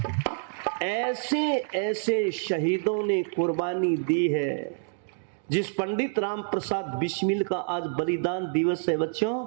ऐसे ऐसे शहीदों ने कुर्बानी दी है। जिस पंडित राम प्रसाद बिस्मिल का आज बलिदान दिवस है बच्चों,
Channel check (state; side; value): silent; left; digital silence